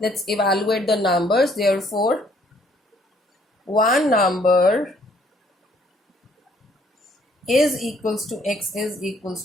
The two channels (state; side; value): normal; both; correlation 0.63